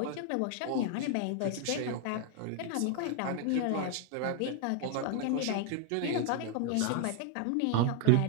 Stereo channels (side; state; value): both; different; correlation 0.00